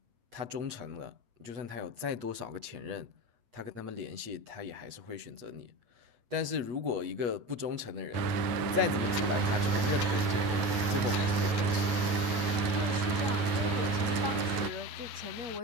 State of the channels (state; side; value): late; left; 8.3 ms